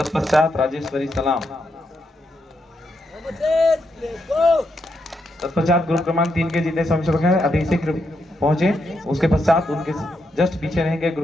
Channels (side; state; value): both; normal; correlation 0.81